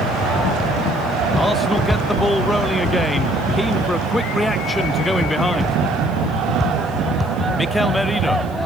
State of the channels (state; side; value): noise; left; hiss, 25 dB below the sound